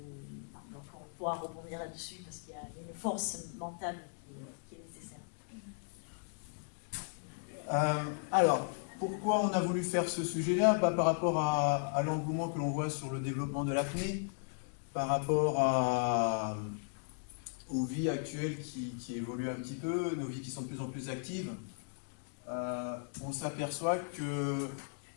Donc on pourra rebondir là-dessus parce qu'il y a une force mentale qui est nécessaire. Alors, pourquoi on a voulu faire ce sujet-là? Par rapport à l'engouement que l'on voit sur le développement de l'apnée, par rapport aux vies actuelles qui évoluent un petit peu, nos vies qui sont de plus en plus actives, on s'aperçoit que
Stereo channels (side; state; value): right; silent; digital silence